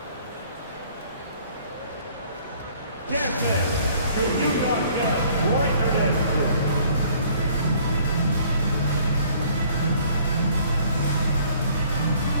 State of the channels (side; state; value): both; inverted; correlation -0.57